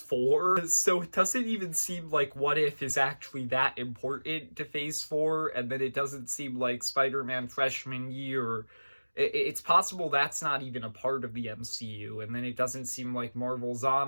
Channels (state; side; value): inverted; both; correlation -1.00